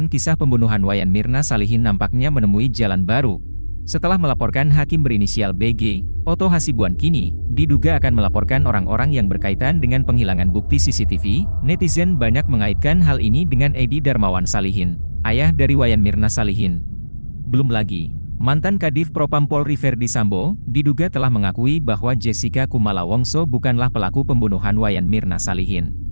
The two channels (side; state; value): both; inverted; correlation -1.00